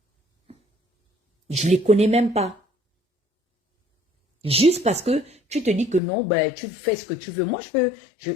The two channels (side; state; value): right; drops out; at 6.0 s